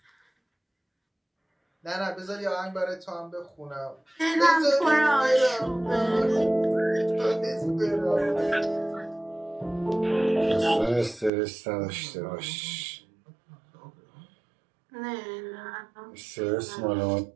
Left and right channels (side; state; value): left; drops out; at 11.3 s